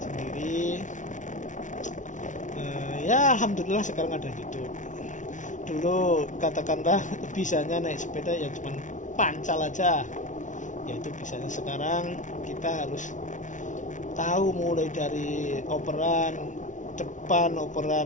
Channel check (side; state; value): right; late; 0.37 ms